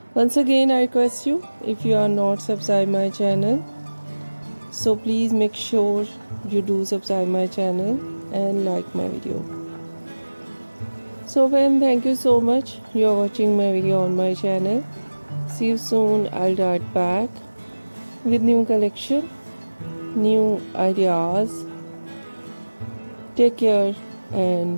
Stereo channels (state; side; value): inverted; both; correlation -1.00